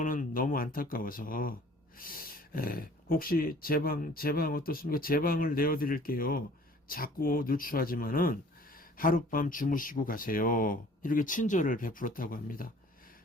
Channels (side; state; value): both; normal; correlation 0.51